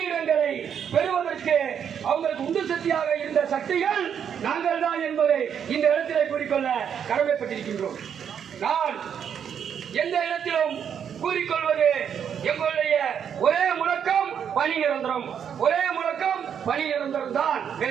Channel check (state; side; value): quieter; left; 8.1 dB